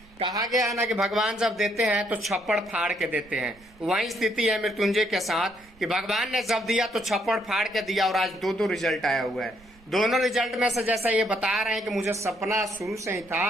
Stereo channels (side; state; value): right; noise; rumble, 27 dB below the sound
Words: कहा गया है ना कि भगवान जब देते हैं तो छप्पड़ फाड़ के देते हैं। वही स्थिति है मृत्युंजय के साथ कि भगवान ने जब दिया तो छप्पड़ फाड़ के दिया और आज 2 रिजल्ट आया हुआ है। दोनों रिजल्ट में से जैसा ये बता रहे हैं कि मुझे सपना शुरू से ही